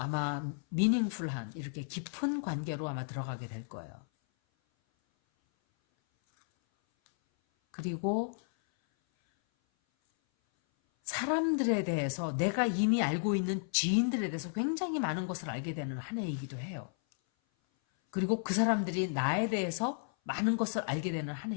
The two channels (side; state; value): right; silent; 56 dB below the other